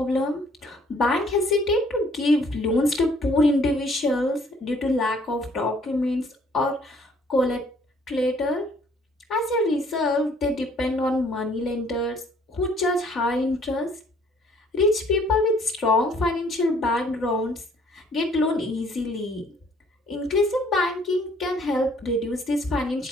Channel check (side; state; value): both; normal; correlation 0.61